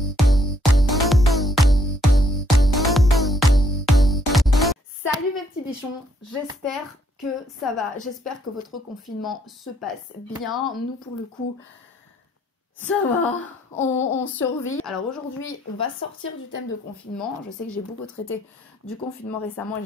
Salut mes petits bichons, j'espère que ça va, j'espère que votre confinement se passe bien. Nous pour le coup, ça va, on survit. Alors aujourd'hui, on va sortir du thème de confinement. Je sais que j'ai beaucoup traité du confinement récemment et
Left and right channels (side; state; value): both; normal; correlation 0.69